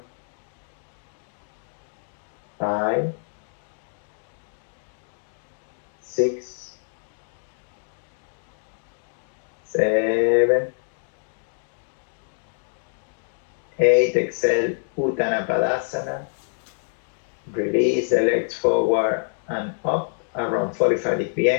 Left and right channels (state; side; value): silent; right; digital silence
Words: 5, 6, 7, 8. Exhale, Uttanapadasana. Release the legs forward and up around 45-degree